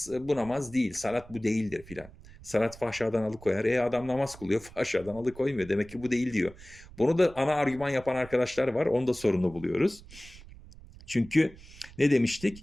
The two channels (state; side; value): noise; right; rumble, 19 dB below the sound